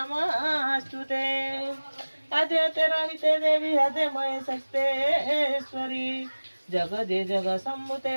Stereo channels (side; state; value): both; inverted; correlation -1.00